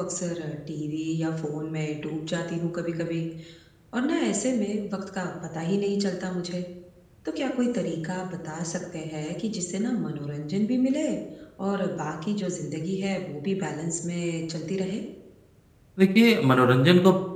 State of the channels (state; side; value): identical; both; correlation 1.00